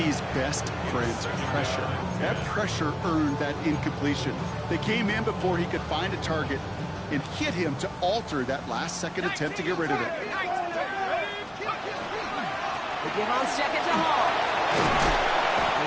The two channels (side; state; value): both; identical; correlation 1.00